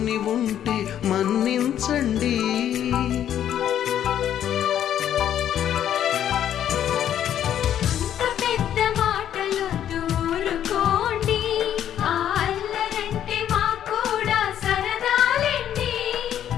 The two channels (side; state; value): right; quieter; 10.4 dB